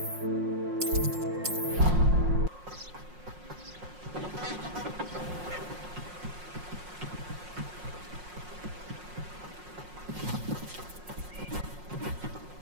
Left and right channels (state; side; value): late; left; 5.5 ms